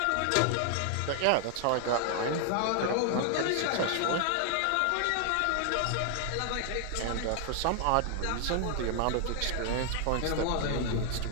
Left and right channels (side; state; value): both; different; correlation 0.00